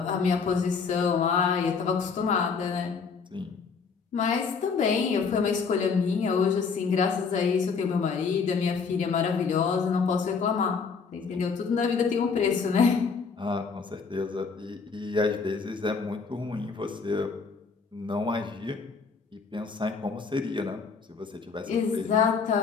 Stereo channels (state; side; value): quieter; right; 5.3 dB